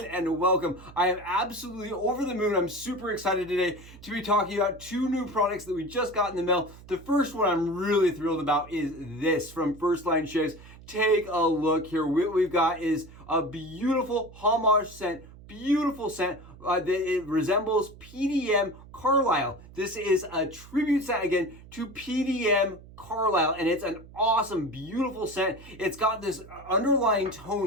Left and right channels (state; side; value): noise; right; hum, 19 dB below the sound